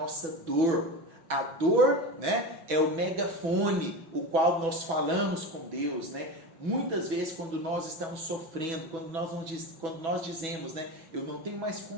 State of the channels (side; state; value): left; late; 6.1 ms